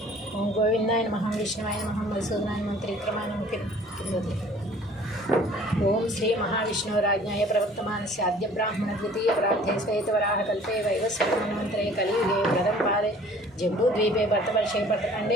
ఓం గోవిందాయ నమః, విష్ణువాయ నమః, మధుసూదనాయ నమః, త్రివిక్రమాయ నమః కిందది. ఓం శ్రీ మహావిష్ణురాజ్ఞాయ ప్రవర్తమానస్య ఆద్య బ్రాహ్మణ ద్వితీయ ప్రార్థే శ్వేతవరాహ కల్పే వైవస్వతమన్వంతరే కలియుగే ప్రథమ పాదే జంబూద్వీపే భరతవర్షే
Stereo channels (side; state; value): both; normal; correlation 0.52